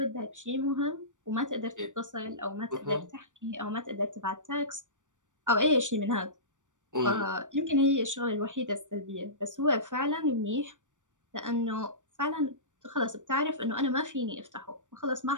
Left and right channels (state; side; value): late; left; 0.86 ms